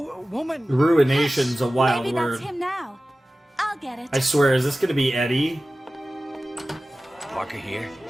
woman. Ruination's a wild Maybe word. that's him now. I'll get it. I swear, is this gonna be Eddie? Parker here?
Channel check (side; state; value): both; normal; correlation 0.96